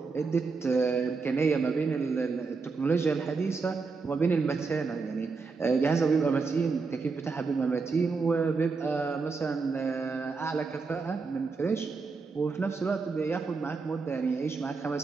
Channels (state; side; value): quieter; left; 4.5 dB